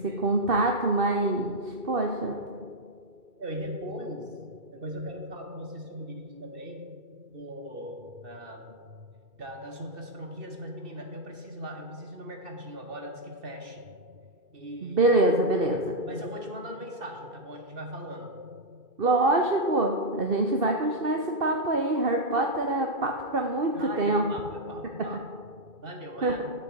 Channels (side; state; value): left; late; 2.6 ms